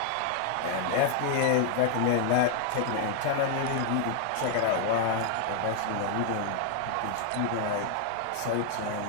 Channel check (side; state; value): both; different; correlation 0.00